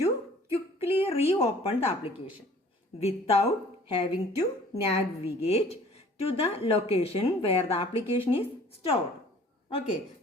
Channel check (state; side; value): normal; both; correlation 0.51